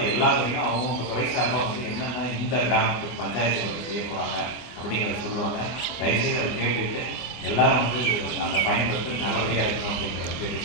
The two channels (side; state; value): right; late; 24 ms